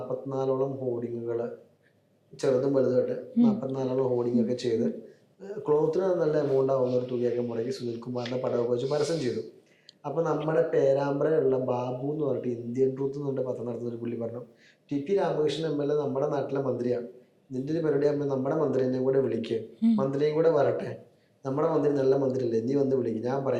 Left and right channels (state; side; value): identical; both; correlation 1.00